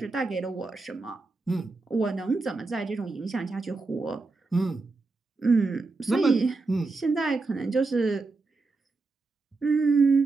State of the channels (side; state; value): left; quieter; 3.7 dB